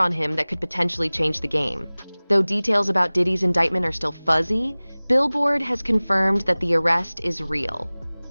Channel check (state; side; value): inverted; both; correlation -1.00